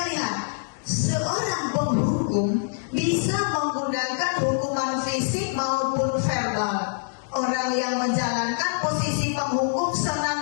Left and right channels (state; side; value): silent; right; digital silence